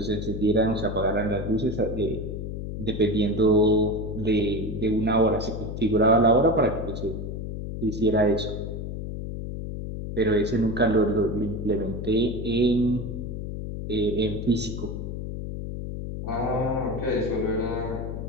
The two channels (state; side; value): noise; left; hum, 6 dB below the sound